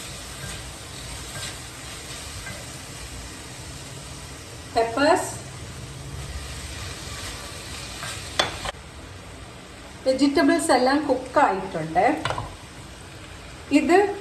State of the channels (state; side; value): identical; both; correlation 1.00